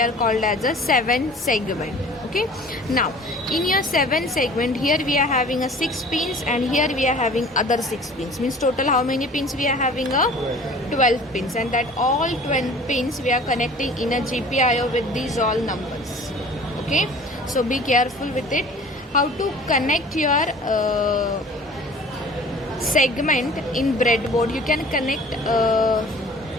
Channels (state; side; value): normal; both; correlation 0.46